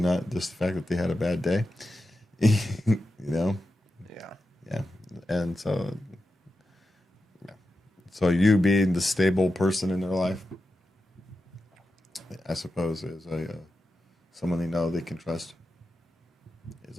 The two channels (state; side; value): normal; both; correlation 0.90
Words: just the fact that they had a bad day. Yeah. Yeah. And so you being the stable person in their life, I suppose, is someone they know they can trust. Is